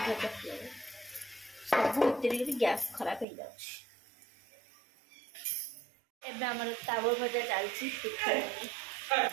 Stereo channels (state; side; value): drops out; left; at 3.2 s